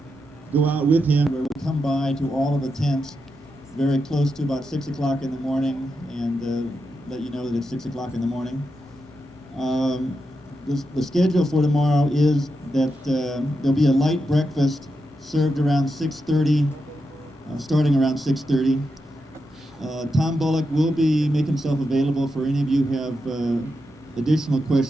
go out with him, where we'll come by to all of the tents very close to about 6 o'clock in the morning and let you know that it's 6 o'clock in the morning. The schedule for tomorrow is that there'll be a light breakfast served around 6:30, starting around 6:30. Tom Bullock will make himself available for any of you who have additional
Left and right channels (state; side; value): normal; both; correlation 0.86